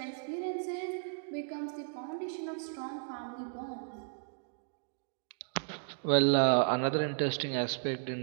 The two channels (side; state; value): left; silent; digital silence